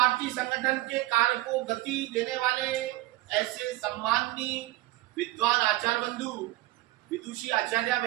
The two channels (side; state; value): left; quieter; 18.2 dB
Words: संगठन के कार्य को गति देने वाले ऐसे सम्माननीय विद्वान आचार्य बंधु, विदुषी आचार्य